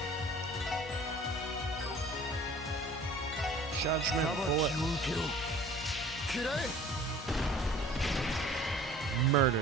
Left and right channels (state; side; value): normal; both; correlation 0.47